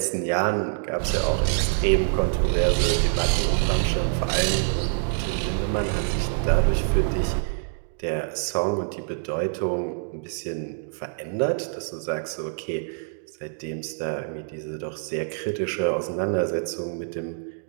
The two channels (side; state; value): left; silent; digital silence